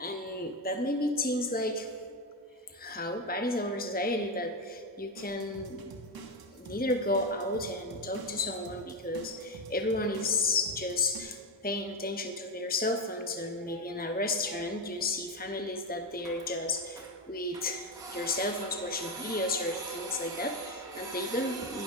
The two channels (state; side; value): normal; both; correlation 0.13